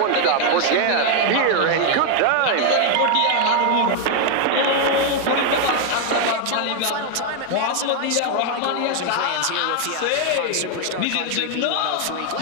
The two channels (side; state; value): both; different; correlation 0.00